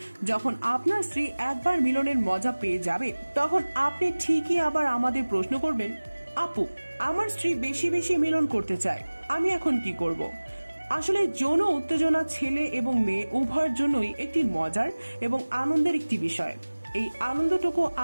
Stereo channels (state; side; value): inverted; both; correlation -1.00